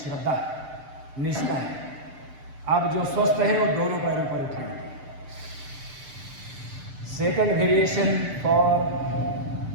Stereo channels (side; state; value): left; late; 6.8 ms